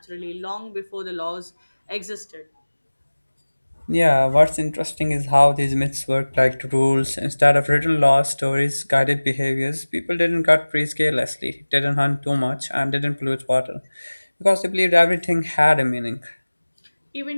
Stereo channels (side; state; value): both; inverted; correlation -1.00